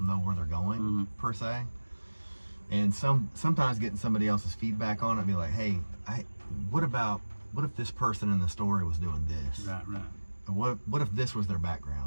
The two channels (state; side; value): inverted; both; correlation -1.00